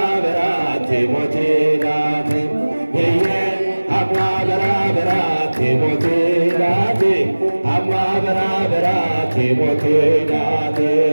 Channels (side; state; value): both; inverted; correlation -1.00